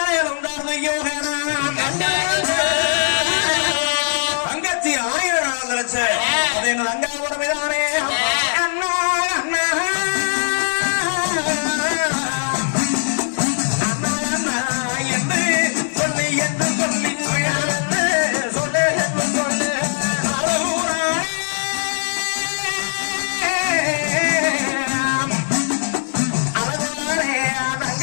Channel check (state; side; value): silent; right; 66 dB below the other